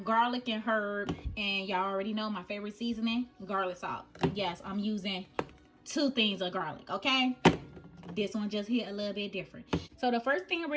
garlic and herb, and y'all already know my favorite seasoning, garlic salt. Yes, I'm using 2 things of garlic, okay? This one just hit a little bit different. So the first thing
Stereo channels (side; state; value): both; identical; correlation 1.00